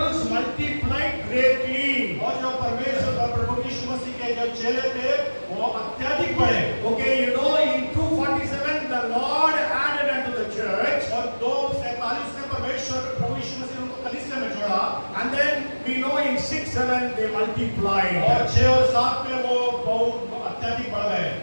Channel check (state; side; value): inverted; both; correlation -1.00